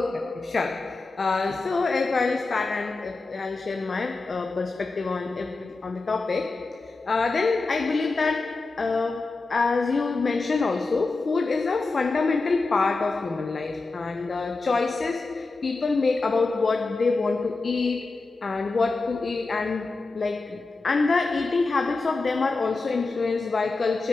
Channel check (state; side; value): quieter; right; 3.7 dB